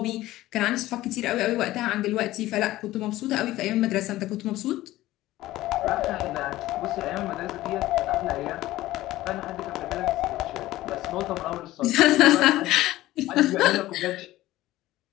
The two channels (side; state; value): right; quieter; 16.2 dB